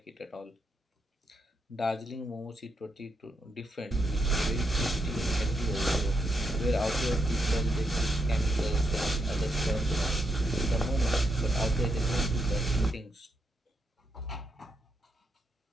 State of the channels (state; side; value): normal; both; correlation 0.80